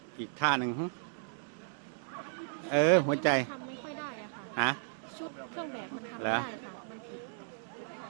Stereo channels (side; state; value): left; silent; digital silence